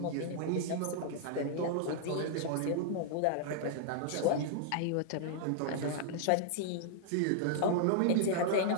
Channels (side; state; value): both; different; correlation -0.01